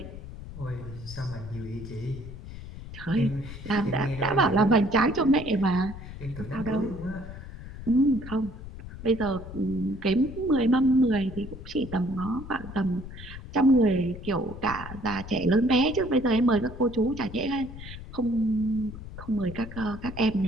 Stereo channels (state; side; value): noise; left; rumble, 12 dB below the sound